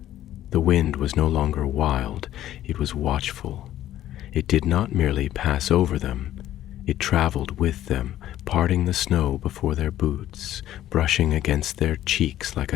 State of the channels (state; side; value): quieter; right; 12.9 dB